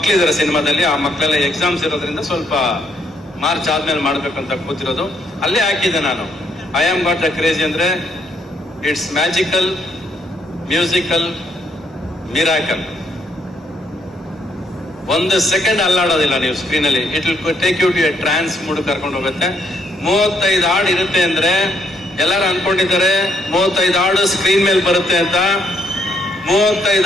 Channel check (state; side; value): normal; both; correlation 0.72